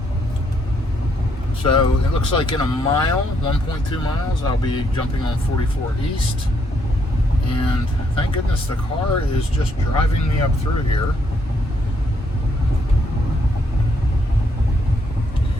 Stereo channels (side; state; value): both; normal; correlation 0.73